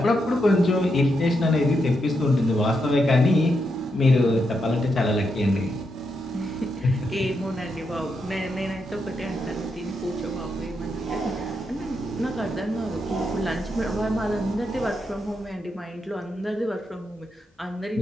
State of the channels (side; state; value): both; normal; correlation 0.82